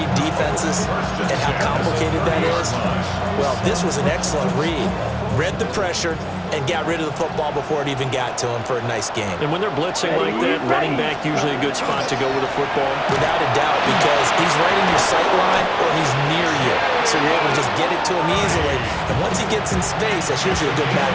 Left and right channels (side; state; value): both; identical; correlation 1.00